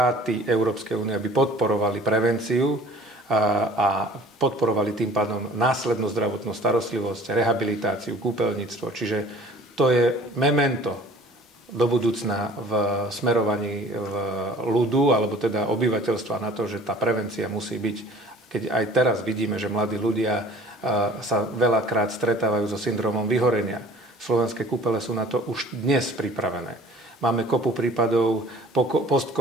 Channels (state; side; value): normal; both; correlation 0.48